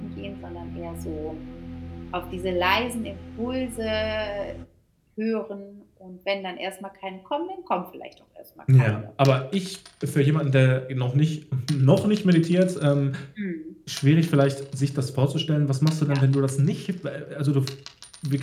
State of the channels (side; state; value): both; identical; correlation 1.00